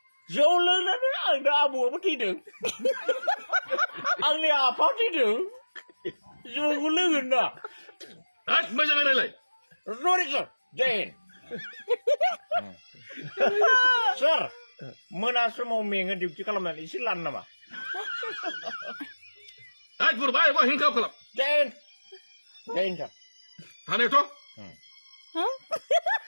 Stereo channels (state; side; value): inverted; both; correlation -1.00